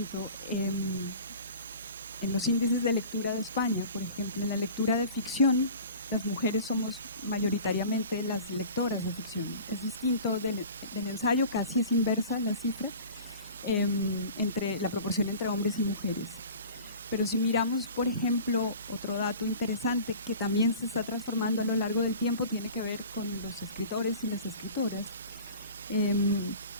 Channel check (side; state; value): both; inverted; correlation -0.41